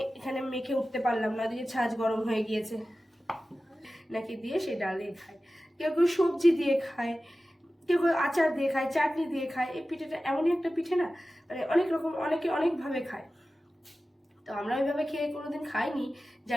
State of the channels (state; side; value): normal; both; correlation 0.95